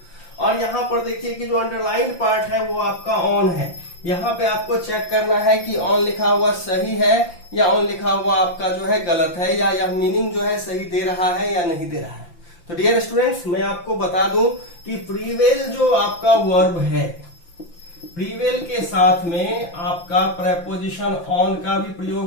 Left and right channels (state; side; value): late; right; 5.8 ms